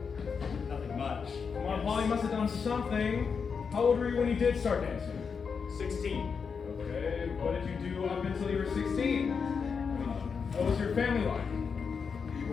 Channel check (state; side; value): quieter; right; 5.8 dB